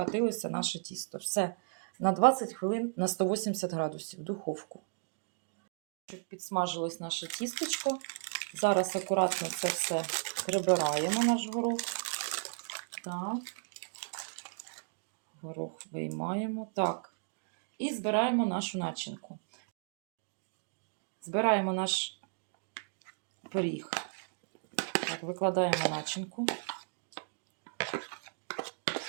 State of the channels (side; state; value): left; silent; digital silence